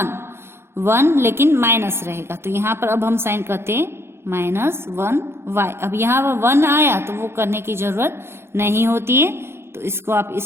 1 लेकिन माइनस रहेगा। तो यहाँ पर अब हम साइन करते हैं -1y। अब यहाँ पर 1 आया तो वो करने की जरूरत नहीं होती है, तो इसको आप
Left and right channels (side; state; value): left; late; 0.12 ms